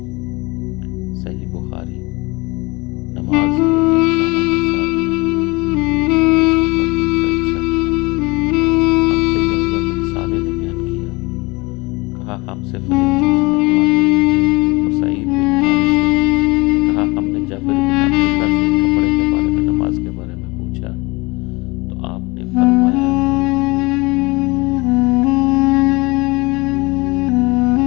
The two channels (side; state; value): right; quieter; 24.8 dB